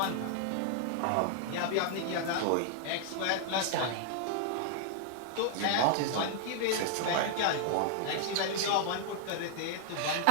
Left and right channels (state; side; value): different; both; correlation -0.01